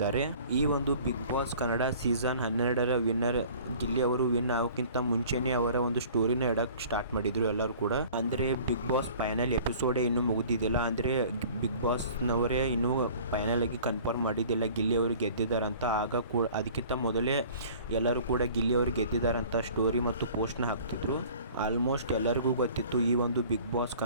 ಈ ಒಂದು ಬಿಗ್ ಬಾಸ್ ಕನ್ನಡ ಸೀಸನ್ 12ರ ವಿನ್ನರ್ ಗಿಲ್ಲಿ ಅವರು ವಿನ್ ಆಗೋಕ್ಕಿಂತ ಮುಂಚೆನೆ ಅವರ ಒಂದು ಸ್ಟೋರಿನ ಇಡಕ್ ಸ್ಟಾರ್ಟ್ ಮಾಡಿದ್ರು ಎಲ್ಲರೂ ಕೂಡ. ಅಂದ್ರೆ ಬಿಗ್ ಬಾಸ್ ಫೈನಲ್ ಎಪಿಸೋಡೇ ಇನ್ನೂ ಮುಗಿದಿದ್ದಿಲ್ಲ. ಅಂದ್ರೆ ಬಿಗ್ ಬಾಸ್ ನವರೇ ಇನ್ನೂ ಫೈನಲ್ ಆಗಿ ಕನ್ಫರ್ಮ್ ಮಾಡಿದ್ದಿಲ್ಲ ಗಿಲ್ಲಿ ಅವರು ಗೆದ್ದಿದ್ದಾರೆ ಅಂತ. ಆಗ ಕೂಡ ಅದಕ್ಕಿಂತ ಮೊದಲೇ ಎಲ್ಲರೂ ಕೂಡ ಗಿಲ್ಲಿ ಅವರು ಗೆದ್ದಿದ್ದಾರಂತ ಸ್ಟೋರಿ ಮತ್ತು ಪೋಸ್ಟ್ನ ಹಾಕ್ತಿದ್ರು. ಆಲ್ಮೋಸ್ಟ್ ಎಲ್ಲರಿಗೂ ಗೊತ್ತಿತ್ತು ಈ ಒಂದು ಬಿಗ್ ಬಾಸ್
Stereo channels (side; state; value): both; inverted; correlation -0.48